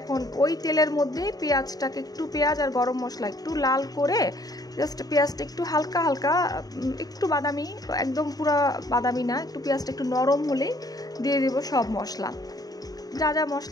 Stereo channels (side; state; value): right; late; 0.18 ms